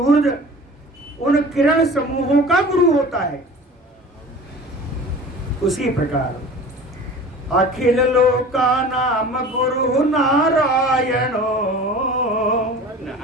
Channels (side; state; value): both; normal; correlation 0.40